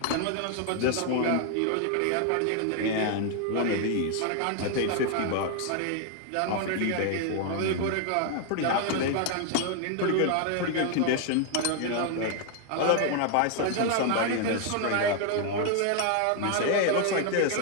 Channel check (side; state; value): both; different; correlation 0.00